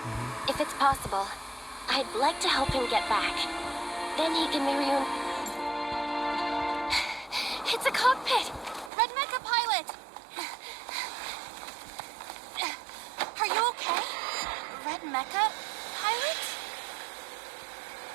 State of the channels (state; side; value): drops out; left; at 8.9 s